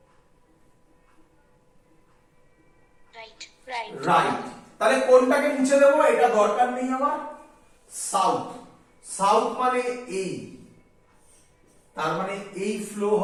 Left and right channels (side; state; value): both; identical; correlation 1.00